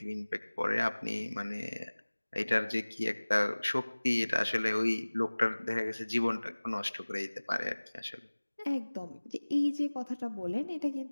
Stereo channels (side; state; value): both; inverted; correlation -1.00